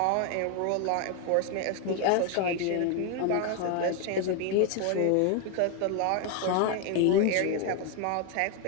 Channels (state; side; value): different; both; correlation 0.01